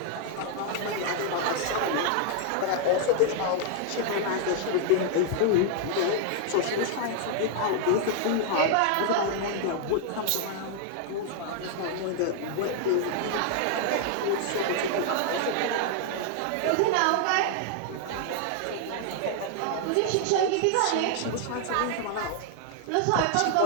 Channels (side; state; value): both; different; correlation 0.00